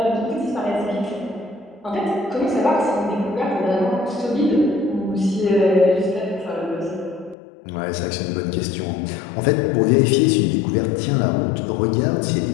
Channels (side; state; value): right; drops out; at 7.4 s